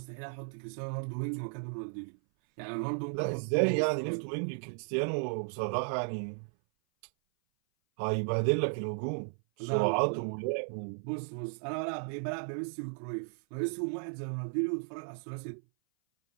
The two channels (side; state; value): left; silent; 55 dB below the other